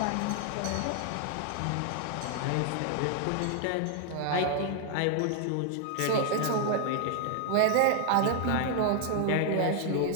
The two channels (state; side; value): different; both; correlation 0.00